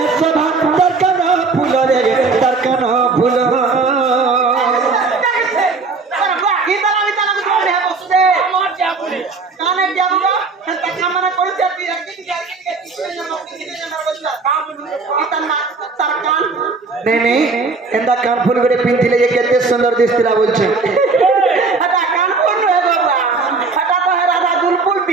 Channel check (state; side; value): quieter; left; 4.1 dB